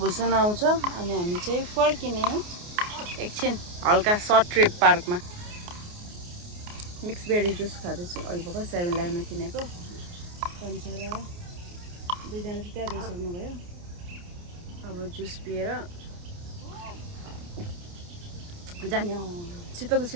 आउँछ, अनि हामी चाहिँ फर्किने एकछिन हल्का सर्ट ट्रिप पार्कमा। मिक्स बेरी जुस खाँदैछु अहिले भर्खर 7-11मा किनेको। पन्चरा दुईजना चाहिँ त्यहाँ गइसक्नु भयो। अब जुस पिएर जाने। शीतल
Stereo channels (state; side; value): late; left; 29 ms